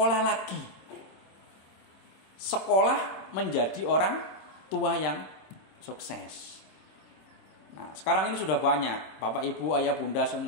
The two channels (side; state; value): right; late; 26 ms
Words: lagi. Sekolah menjadi orang tua yang sukses. Nah, sekarang ini sudah banyak. Bapak, Ibu, Ayah, Bunda